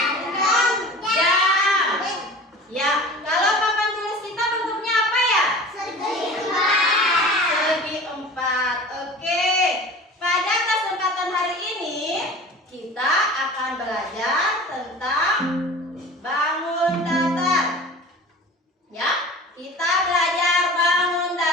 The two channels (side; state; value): both; normal; correlation 0.39